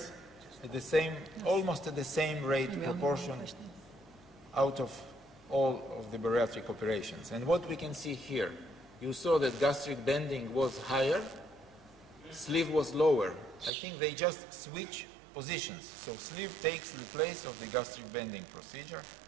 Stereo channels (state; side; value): drops out; left; at 13.7 s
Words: at the same, almost at the same rate proportion out of all of the bariatric operations. And what we can see here, you saw that gastric bending was higher, sleeve was lower. I think they just switch positions. So sleeve takes the place of the gastric bending procedure.